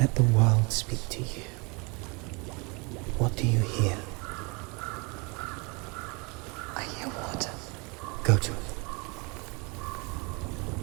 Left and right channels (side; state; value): left; quieter; 29.8 dB